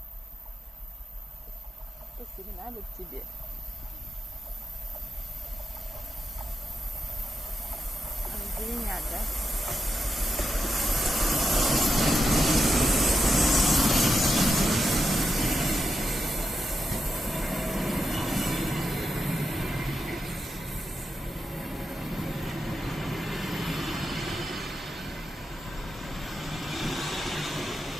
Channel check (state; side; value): normal; both; correlation 0.86